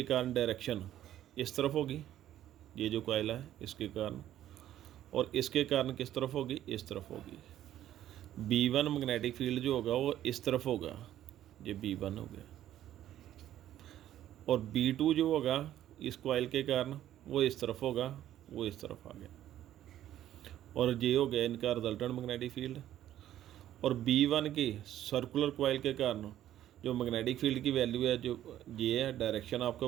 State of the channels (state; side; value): quieter; left; 12.3 dB